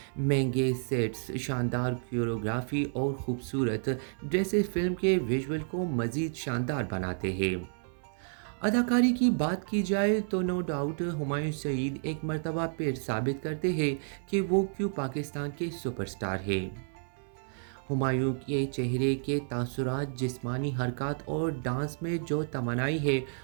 مہنگے سیٹس، شاندار کوریوگرافی اور خوبصورت ڈریسز فلم کے ویژول کو مزید شاندار بناتے ہیں۔ اداکاری کی بات کی جائے تو نو ڈاؤٹ ہمایوں سعید ایک مرتبہ پھر ثابت کرتے ہیں کہ وہ کیوں پاکستان کے سپر سٹار ہیں۔ ہمایوں کے چہرے کے تاثرات، جسمانی حرکات اور ڈانس میں جو توانائی ہے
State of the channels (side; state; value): left; silent; 57 dB below the other